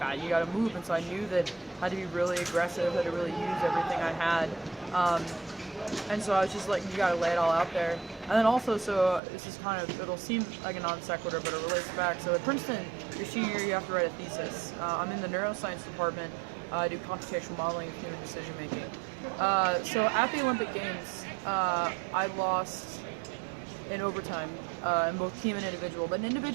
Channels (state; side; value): drops out; left; at 9.2 s